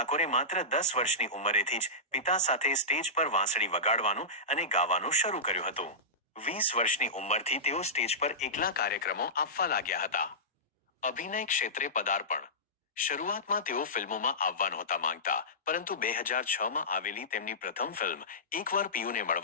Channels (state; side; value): normal; both; correlation -0.17